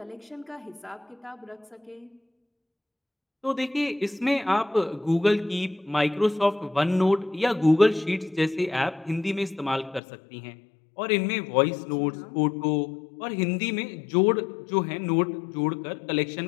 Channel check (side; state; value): right; drops out; at 10.0 s